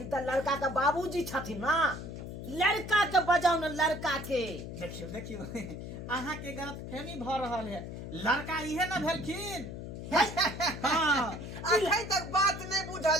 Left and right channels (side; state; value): left; noise; hum, 9 dB below the sound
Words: तो लड़का के बाबूजी छथिन ना, लड़का के बजाओ ना लड़का के। देखियो देखियो अहाँ के गलत फहमी भ रहल है, लड़का इहे ना भेलखिन। हाँ अखन तक बात नहीं